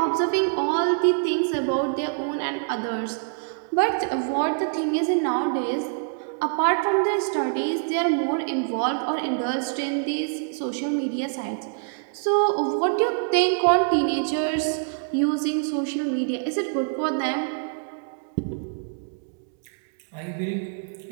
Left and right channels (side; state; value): left; silent; digital silence